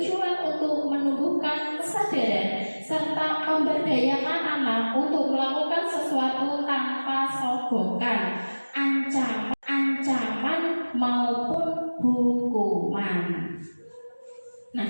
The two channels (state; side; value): inverted; both; correlation -1.00